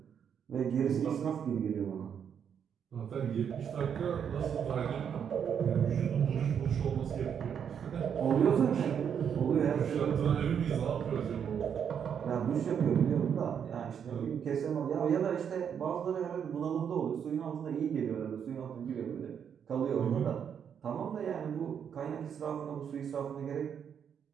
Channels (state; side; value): quieter; left; 7.9 dB